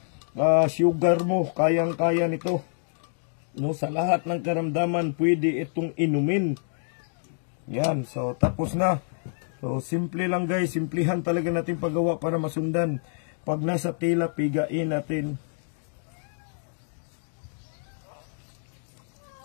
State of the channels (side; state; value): right; silent; digital silence